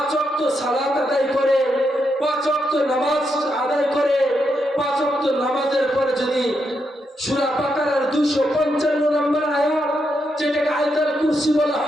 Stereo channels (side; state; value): both; normal; correlation 0.82